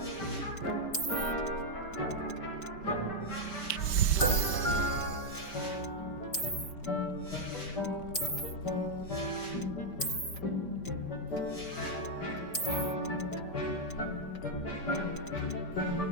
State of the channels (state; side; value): late; right; 5.1 ms